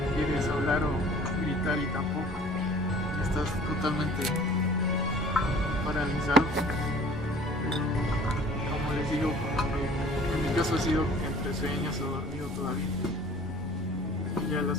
Quieres hablar o gritar y tampoco. Estás totalmente paralizado. Pero como les digo, en mi caso ha sido entre sueños o dormido todavía. Y ya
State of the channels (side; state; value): both; normal; correlation 0.49